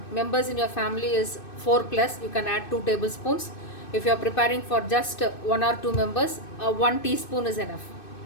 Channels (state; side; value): late; right; 2.6 ms